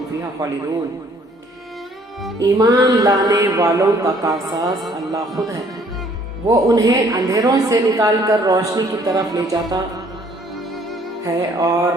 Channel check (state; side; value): normal; both; correlation 0.61